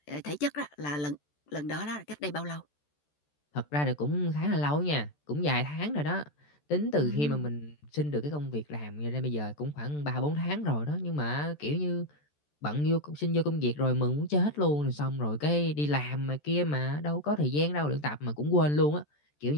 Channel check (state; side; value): late; right; 14 ms